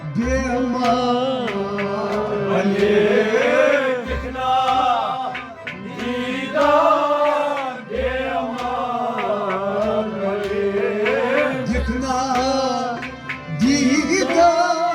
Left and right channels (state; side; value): identical; both; correlation 1.00